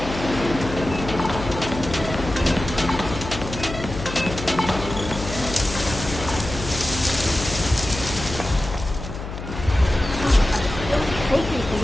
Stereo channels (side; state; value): left; noise; hum, 8 dB below the sound